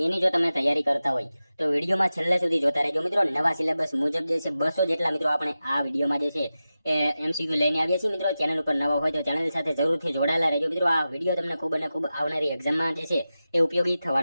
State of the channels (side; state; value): both; inverted; correlation -0.94